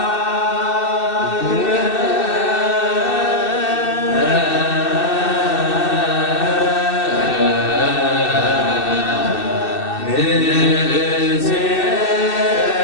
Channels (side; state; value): right; late; 2.6 ms